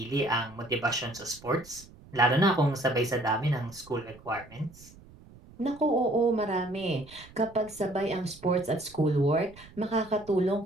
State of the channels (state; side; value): noise; right; rumble, 22 dB below the sound